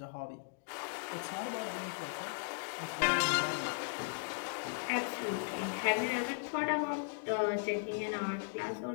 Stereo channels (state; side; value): silent; right; digital silence